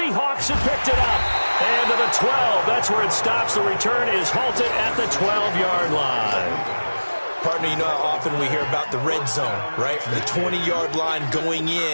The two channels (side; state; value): both; inverted; correlation -1.00